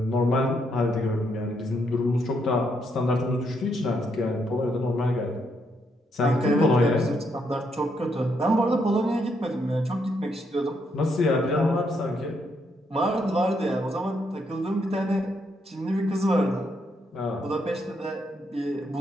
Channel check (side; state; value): both; normal; correlation 0.76